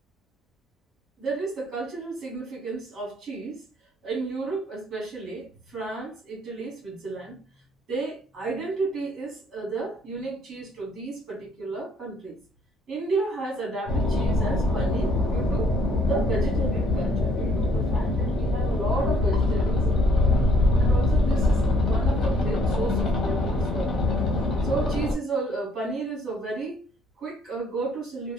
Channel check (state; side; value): normal; both; correlation 0.64